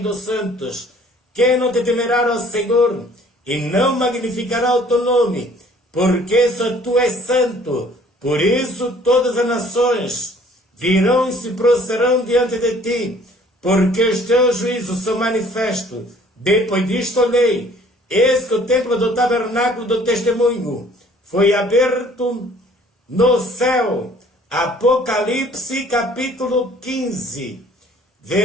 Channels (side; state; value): both; normal; correlation 0.55